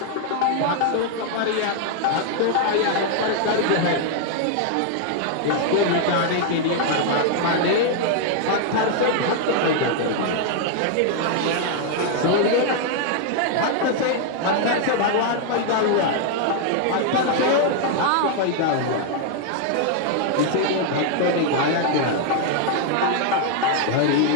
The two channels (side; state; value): both; different; correlation 0.00